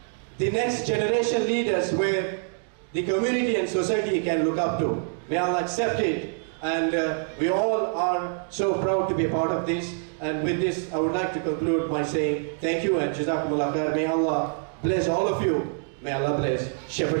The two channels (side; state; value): left; silent; 61 dB below the other